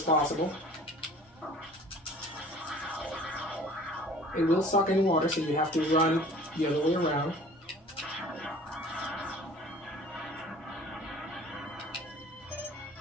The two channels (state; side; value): normal; both; correlation 0.48